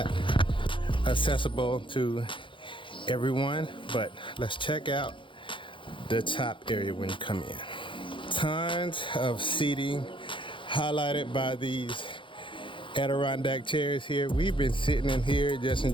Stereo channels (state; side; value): late; right; 0.25 ms